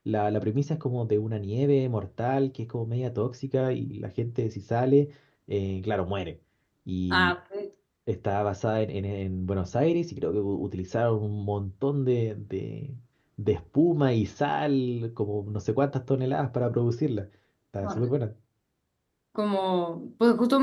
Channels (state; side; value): identical; both; correlation 1.00